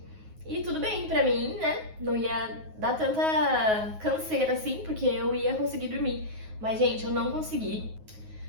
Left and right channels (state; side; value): late; left; 9.4 ms